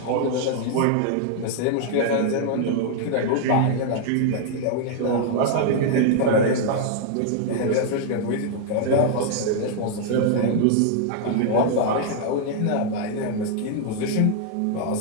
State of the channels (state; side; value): different; both; correlation 0.00